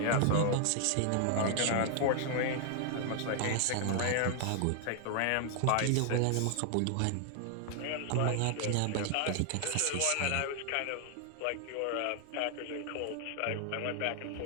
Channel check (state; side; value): different; both; correlation 0.00